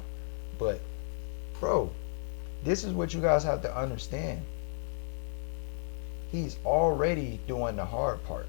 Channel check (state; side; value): silent; right; digital silence